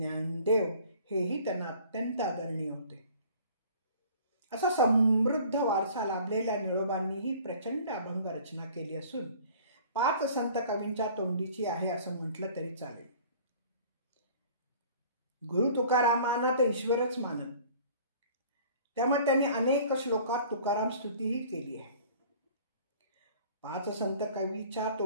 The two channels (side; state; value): both; inverted; correlation -0.50